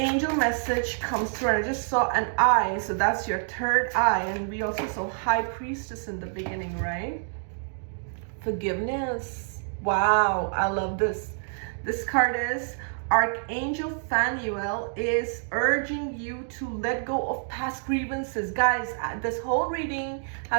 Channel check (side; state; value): left; silent; digital silence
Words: message comes through. And I just saw an eye, so that's your third eye. And we also saw High Priestess in the beginning, right? Forgiveness. Wow, I love this. This card is Archangel Phanuel is urging you to let go of past grievances. Guys, this whole reading